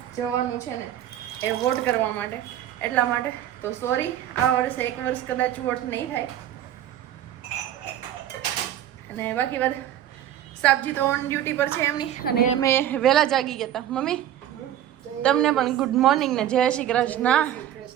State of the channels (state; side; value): quieter; left; 11.6 dB